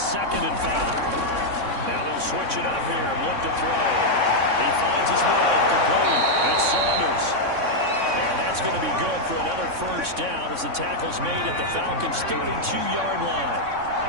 and 5. Now they'll switch it up here and look to throw. He finds his man complete. It's Saunders. And that's going to be good for another first down as the tackle's made at the Falcons' 32-yard line.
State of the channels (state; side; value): late; left; 3.6 ms